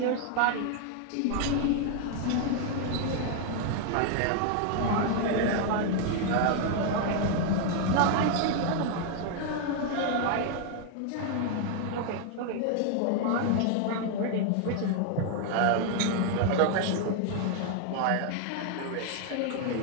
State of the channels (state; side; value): different; both; correlation 0.00